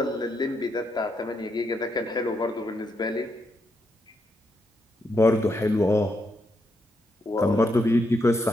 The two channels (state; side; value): normal; both; correlation 0.80